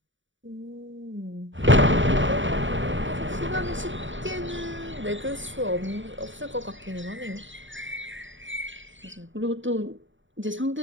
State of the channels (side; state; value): left; late; 0.55 ms